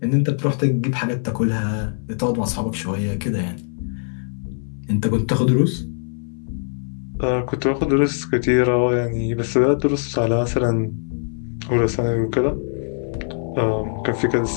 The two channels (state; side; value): silent; right; 64 dB below the other